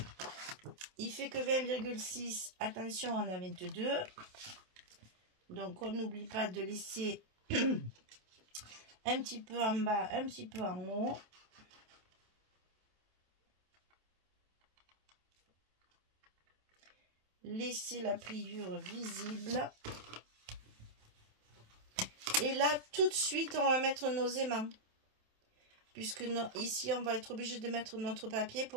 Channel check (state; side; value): late; left; 27 ms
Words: Il fait que 20,6. Attention, on a 22. Donc, on n'oublie pas de laisser un petit peu en bas, un petit peu en haut. Laissez la pliure visible. Et là, tout de suite, on va mettre nos aimants. puisque ici, on va être obligé de mettre notre papier